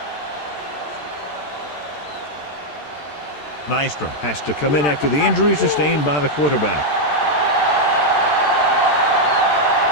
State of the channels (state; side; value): late; right; 13 ms